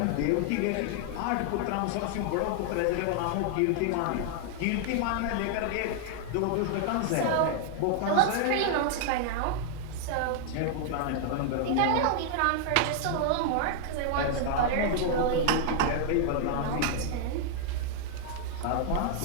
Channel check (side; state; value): both; different; correlation 0.00